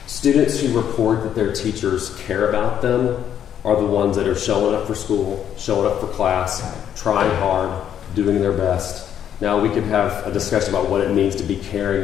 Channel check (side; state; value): right; quieter; 9.6 dB